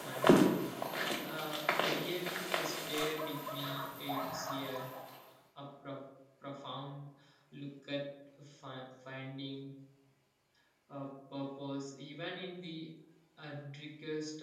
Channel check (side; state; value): both; identical; correlation 1.00